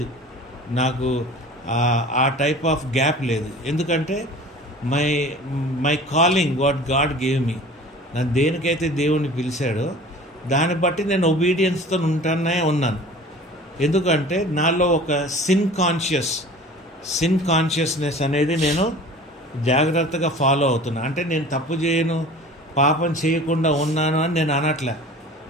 నాకు ఆ టైప్ ఆఫ్ గ్యాప్ లేదు. ఎందుకంటే my calling what God gave me, నన్ను దేనికైతే దేవుని పిలిచాడో దాన్ని బట్టి నేను ఒబీడియన్స్తో ఉన్నాను. ఎందుకంటే నాలో ఒక సిన్ కాన్షియస్నెస్ అనేది నేను జాగ్రత్తగా ఫాలో అవుతున్నా. అంటే నేను తప్పు చేయను, పాపం చేయకుండా ఉన్నాను అని నేను అనట్లే.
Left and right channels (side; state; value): both; normal; correlation 0.42